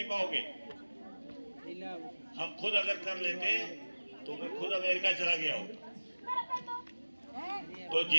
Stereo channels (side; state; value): both; inverted; correlation -1.00